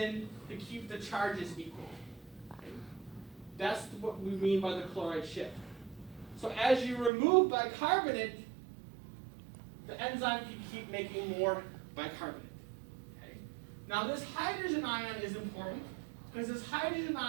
to keep the charges equal. Okay. That's what we mean by the chloride shift. So as you remove bicarbonate, the enzyme can keep making more bicarbonate. Okay. Now this hydrogen ion is important because this hydrogen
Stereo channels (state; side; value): drops out; left; at 7.1 s